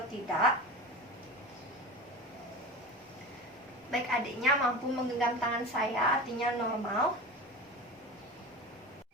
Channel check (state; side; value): normal; both; correlation 0.29